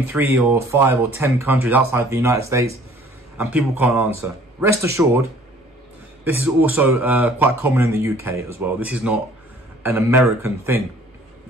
3 or 5 or 10 countries outside the United States, and people can't answer. Rest assured, this is also quite common in the UK as well. This is not an American thing.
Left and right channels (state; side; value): normal; both; correlation 0.54